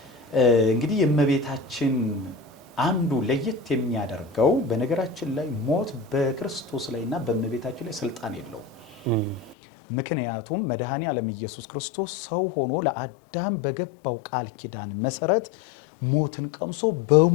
እንግዲህ የእመቤታችን አንዱ ለየት የሚያደርገው በነገራችን ላይ ሞት በክርስቶስ ላይና በእመቤታችን ላይ ስልጣን የለውም። ምክንያቱም መድኃኔዓለም ኢየሱስ ክርስቶስ ሰው ሆኖ ለአዳም በገባው ቃል ኪዳን መሰረት ሞትን ቀምሶ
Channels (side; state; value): right; drops out; at 9.6 s